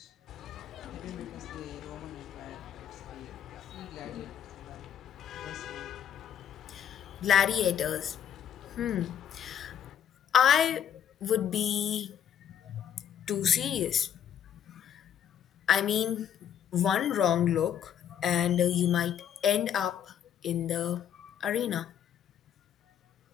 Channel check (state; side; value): quieter; right; 9.4 dB